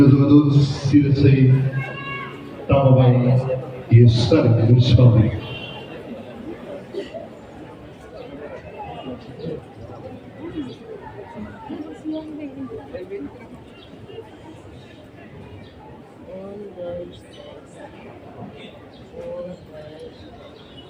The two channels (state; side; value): identical; both; correlation 1.00